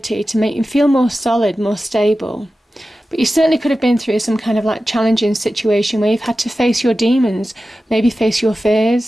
to make you feel more solid, more stable. But you certainly could have been through some kind of like challenging situation where you've had to face your demons, maybe face your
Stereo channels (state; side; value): normal; both; correlation 0.94